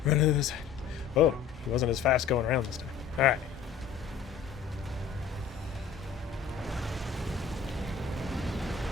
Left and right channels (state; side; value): quieter; right; 6.9 dB